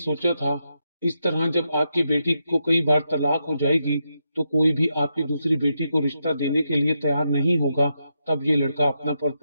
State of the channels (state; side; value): inverted; both; correlation -0.84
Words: था, इस तरह जब आपकी बेटी को कई बार तलाक हो जाएगी तो कोई भी आपकी दूसरी बेटी को रिश्ता देने के लिए तैयार नहीं होगा। तब ये लड़का अपना